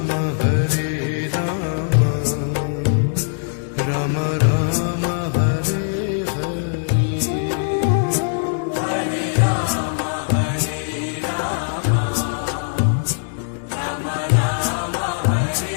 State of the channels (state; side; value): silent; right; digital silence